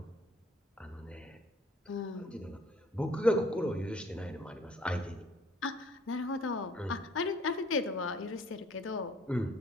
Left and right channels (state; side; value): normal; both; correlation 0.57